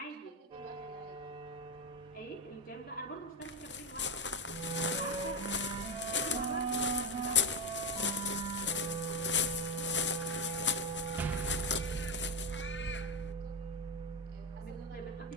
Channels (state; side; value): normal; both; correlation 0.11